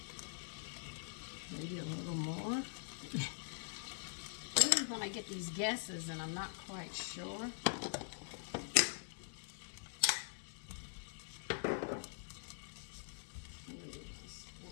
Maybe a little more. This is when I get these guesses and I'm not quite sure.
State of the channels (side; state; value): right; silent; digital silence